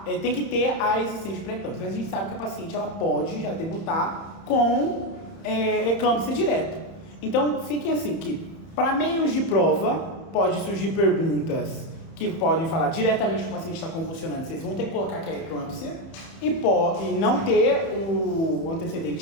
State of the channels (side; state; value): right; late; 31 ms